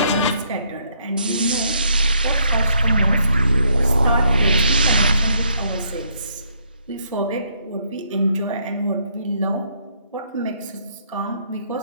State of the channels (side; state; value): both; inverted; correlation -0.72